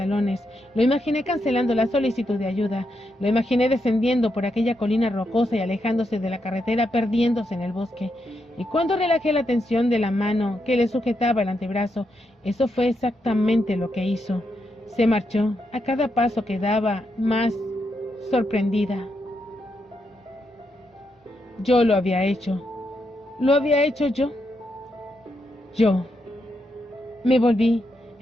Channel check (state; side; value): normal; both; correlation 0.82